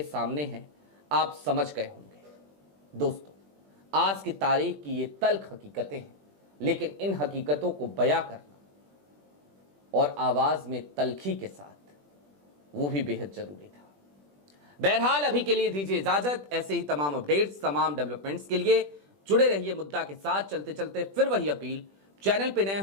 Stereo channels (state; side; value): late; left; 20 ms